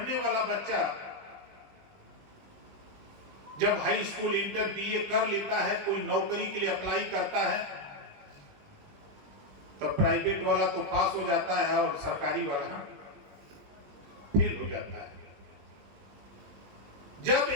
वाला बच्चा जब हाई स्कूल इंटर बीए कर लेता है, कोई नौकरी के लिए अप्लाई करता है, तो प्राइवेट वाला तो पास हो जाता है और सरकारी वाला फेल हो जाता है। जब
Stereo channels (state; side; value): late; left; 20 ms